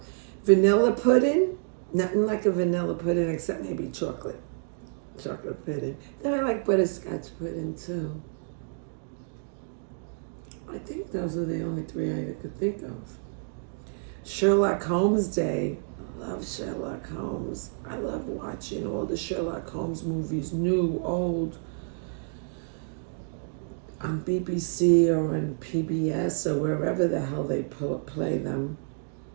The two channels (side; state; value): left; silent; digital silence